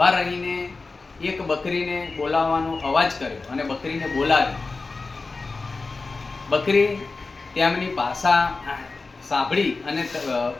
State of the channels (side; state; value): right; quieter; 3.9 dB